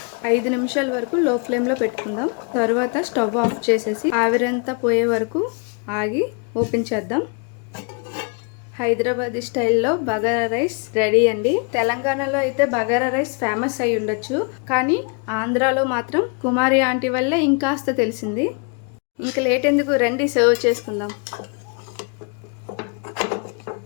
5 నిమిషాల వరకు లో ఫ్లేమ్లో పెట్టుకుందాం. తర్వాత స్టవ్ ఆఫ్ చేసేసి ఆవిరంతా పోయే వరకు ఆగి ఓపెన్ చేద్దాం. హైదరాబాదీ స్టైల్లో బగారా రైస్ రెడీ అండి. తెలంగాణలో అయితే బగారా రైస్ ఫేమస్ అయి ఉండొచ్చు, కానీ ఆంధ్రాలో మాత్రం కుమారి ఆంటీ వల్లే ఇంకాస్త తెలిసింది. ఇంకా లేట్ ఎందుకు, రండి సర్వ్ చేసుకుందాం.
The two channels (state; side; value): quieter; right; 35.4 dB